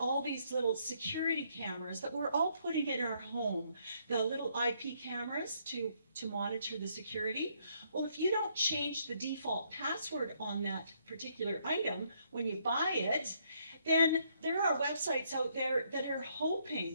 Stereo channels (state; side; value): inverted; both; correlation -0.71